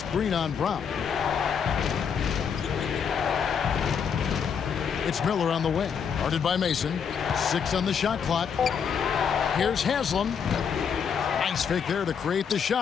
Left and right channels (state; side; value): quieter; right; 7.0 dB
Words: on Brown. It's Miller on the wing. Guarded by Mason. 6 on the shot clock. Here's Haslam. Nice fake there to create the